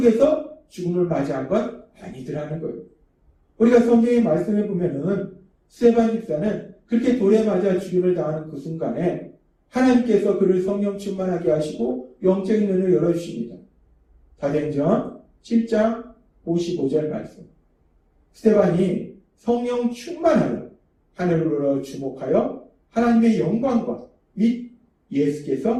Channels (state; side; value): identical; both; correlation 1.00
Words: 죽음을 맞이한 건 아니더라는 거예요. 우리가 성경의 말씀에 보면은 스데반 집사는 그렇게 돌에 맞아 죽임을 당하는 그 순간에 하나님께서 그를 성령 충만하게 하시고 영적인 눈을 열어주십니다. 사도행전 7장 55절 말씀. 스데반이 성령 충만하여 하늘으로 주목하여 하나님의 영광과 및